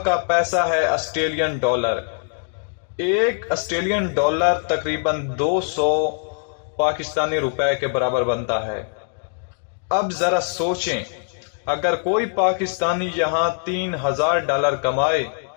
کا پیسہ ہے آسٹریلین ڈالر۔ ایک آسٹریلین ڈالر تقریباً 200 پاکستانی روپے کے برابر بنتا ہے۔ اب ذرا سوچیں، اگر کوئی پاکستانی یہاں $3000 کمائے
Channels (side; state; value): right; silent; digital silence